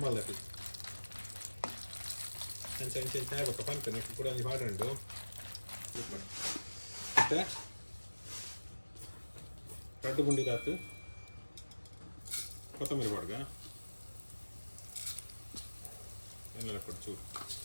ಅಂಚೆ ಆಗ್ಬೇಕ ಪಂಪನೆ ಕೂಡ ಒಂಜಿ ಪಾಡುಂಡು ಮತ್ತೆ 2 ಗುಂಡಿದಾತು ಕೊತ್ತಂಬರಿ ಬಾಡ್ಗ ಎಣ್ಣೆಲ್ಲ ಕೊಟ್ಟು ಚೂರು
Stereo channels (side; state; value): both; inverted; correlation -1.00